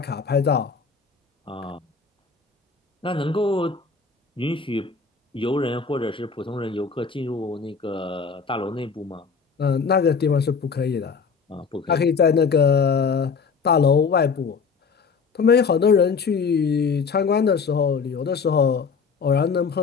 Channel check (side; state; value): right; quieter; 5.4 dB